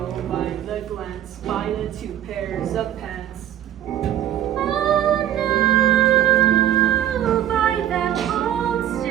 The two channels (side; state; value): left; quieter; 11.2 dB